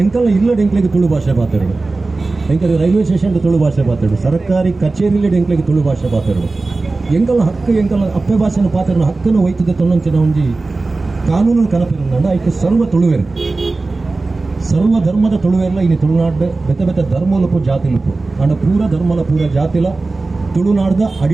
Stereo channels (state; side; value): quieter; left; 3.5 dB